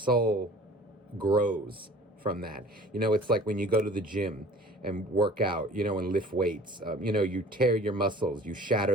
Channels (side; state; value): both; normal; correlation 0.47